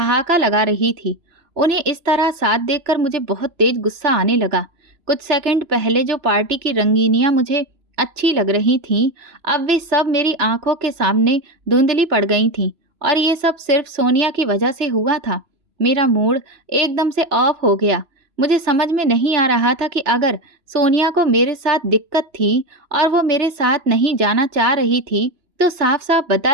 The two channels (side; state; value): left; late; 3.0 ms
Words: लगा रही थी। उन्हें इस तरह साथ देखकर मुझे बहुत तेज गुस्सा आने लगा। कुछ सेकंड पहले जो पार्टी की रंगीनियां मुझे अच्छी लग रही थीं, अब वे सब मेरी आंखों के सामने धुंधली पड़ गई थीं और ये सब सिर्फ सोनिया की वजह से हुआ था। मेरा मूड एकदम से ऑफ हो गया। मुझे समझ में नहीं आ रहा था कि अगर सोनिया को मेरे साथ दिक्कत थी और वो मेरे साथ नहीं जाना चाह रही थी तो साफ साफ